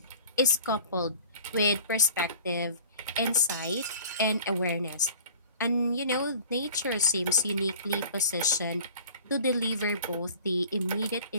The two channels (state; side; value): inverted; both; correlation -0.44